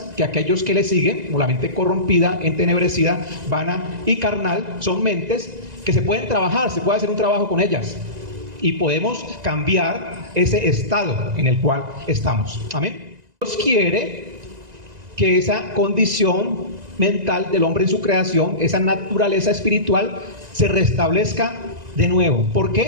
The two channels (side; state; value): left; late; 1.9 ms